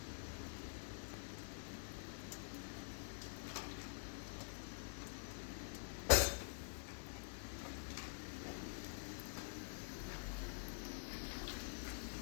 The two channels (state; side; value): silent; right; digital silence